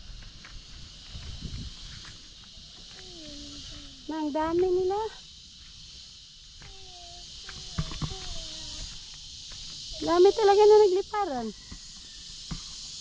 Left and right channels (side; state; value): both; identical; correlation 1.00